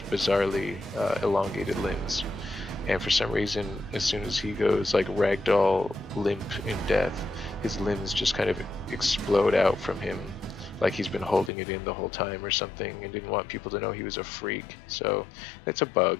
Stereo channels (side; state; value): right; drops out; at 11.5 s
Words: bizarrely elongated limbs. And for some reason, as soon as he goes like ragdoll limp in death, his limbs just kind of explode out from him, like he's been holding it in the whole time or something and didn't want people to know he was a freak. So that's a